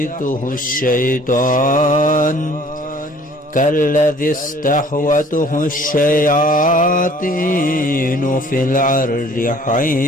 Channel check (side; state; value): both; normal; correlation 0.54